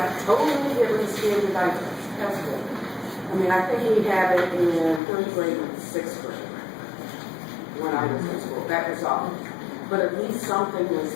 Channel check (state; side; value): drops out; right; at 5.0 s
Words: totally get rid of standardized testing. I mean, I think we had it in third grade and sixth grade when I was in school. That was all. But at least something was